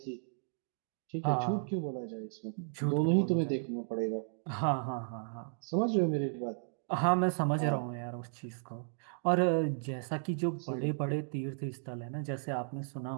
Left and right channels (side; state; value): left; silent; digital silence